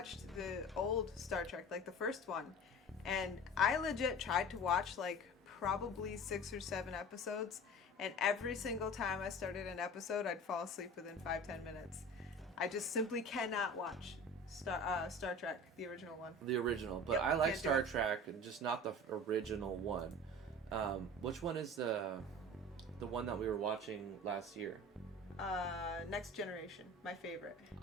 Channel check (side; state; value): both; normal; correlation 0.38